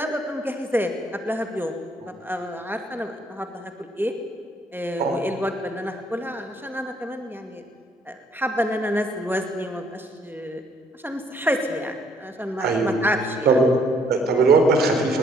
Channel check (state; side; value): normal; both; correlation 0.65